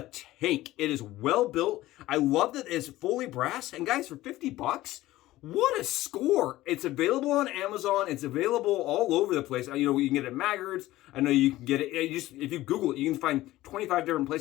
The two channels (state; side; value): quieter; right; 16.5 dB